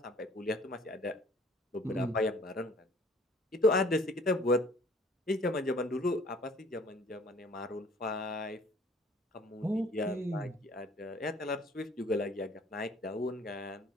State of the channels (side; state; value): both; normal; correlation 0.55